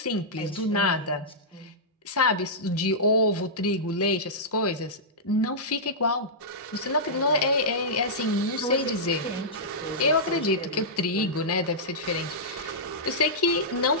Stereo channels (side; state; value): both; normal; correlation -0.13